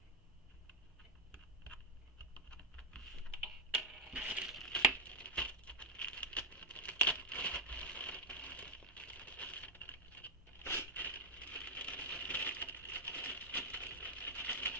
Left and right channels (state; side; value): normal; both; correlation -0.01